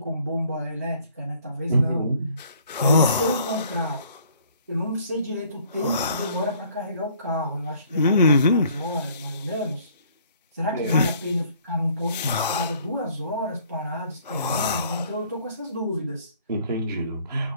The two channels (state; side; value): inverted; both; correlation -0.58